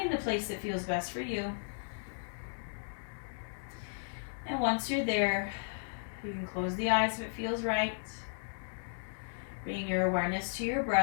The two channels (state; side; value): silent; right; digital silence